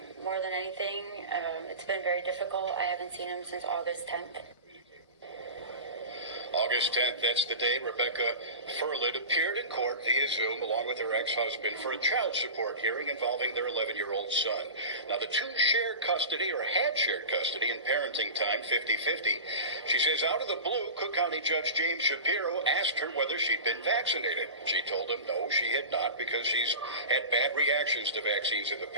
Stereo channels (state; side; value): inverted; both; correlation -0.30